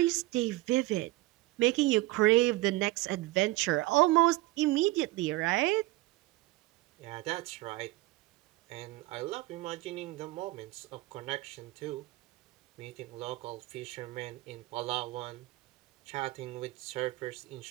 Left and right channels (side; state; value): left; quieter; 19.3 dB